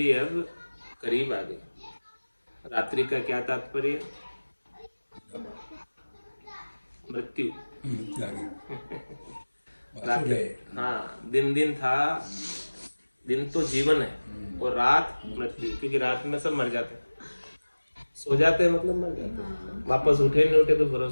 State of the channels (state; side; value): inverted; both; correlation -1.00